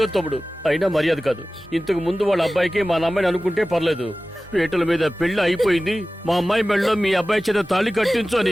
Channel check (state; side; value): normal; both; correlation 0.96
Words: తమ్ముడు, అయినా మర్యాద కాదు. ఇంతకు ముందు వాళ్ళ అబ్బాయికి మా అమ్మాయిని అనుకుంటే పర్లేదు. పీటల మీద పెళ్లి అయిపోయింది, మా అమ్మాయి మెళ్ళలో మీ అబ్బాయి చేత తాళి కట్టించు